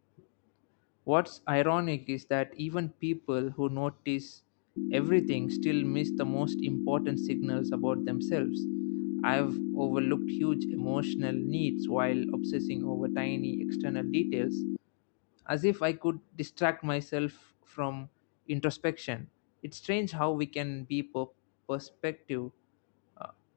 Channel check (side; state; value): right; silent; digital silence